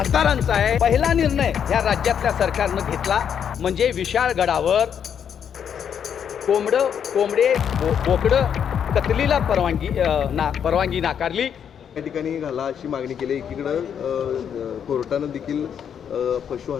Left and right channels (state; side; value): quieter; right; 8.2 dB